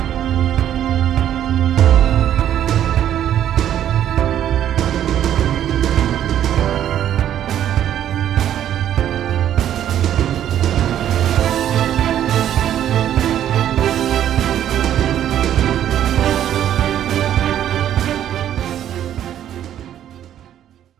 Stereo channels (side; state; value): left; quieter; 10.9 dB